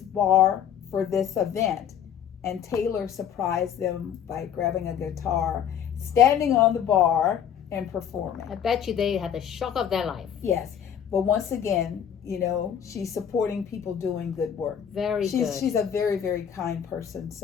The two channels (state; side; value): quieter; right; 8.8 dB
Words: for this event. And Taylor surprised them by grabbing a guitar, standing on the bar, and performing. I bet you they had the shock of their life. Yes. But once again, she's supporting people doing good work. Very good. She's a very, very kind person.